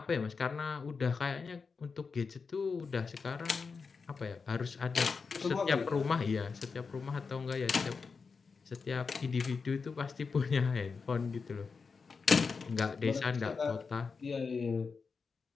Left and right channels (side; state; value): right; quieter; 5.0 dB